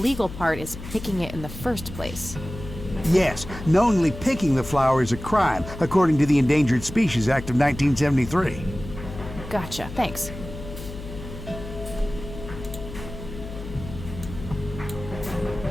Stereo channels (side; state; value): left; noise; hum, 11 dB below the sound